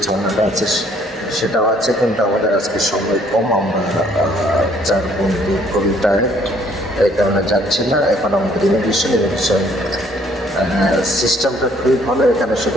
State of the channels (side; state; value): both; normal; correlation 0.62